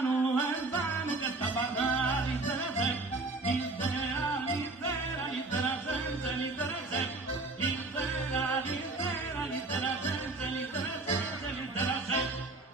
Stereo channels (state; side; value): quieter; left; 3.3 dB